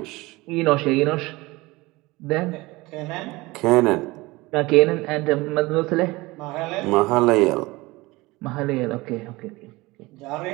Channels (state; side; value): quieter; left; 21.6 dB